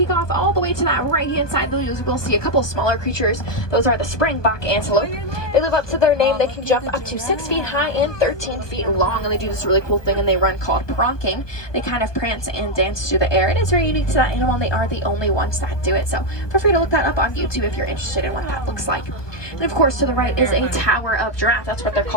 off all the way to that right-hand side, you will see a couple smaller creatures. Those are the springbok antelope. They live up to their name. They can jump up to 6 feet high and 13 feet long, and they do this really cool thing, and they run called pronking. They kind of prance and dance through the air. It is very unique to that animal, and they are the only ones that do it. So feel free to look that up on YouTube if you're interested in what that looks like. And of course, to the right is a tower of giraffe. That's what they're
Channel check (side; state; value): right; late; 1.2 ms